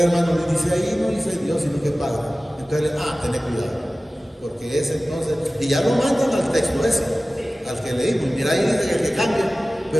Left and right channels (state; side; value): normal; both; correlation 0.97